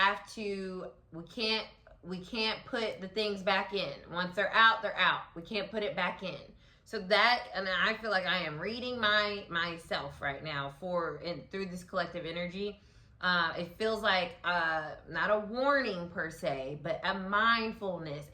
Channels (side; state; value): both; identical; correlation 1.00